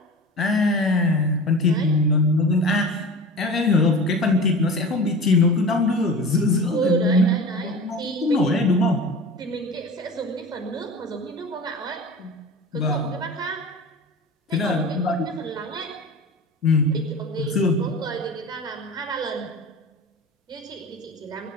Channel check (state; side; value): normal; both; correlation 0.35